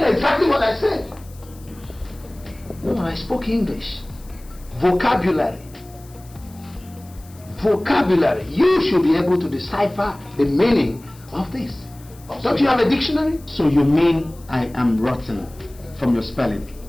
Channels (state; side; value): noise; left; hiss, 25 dB below the sound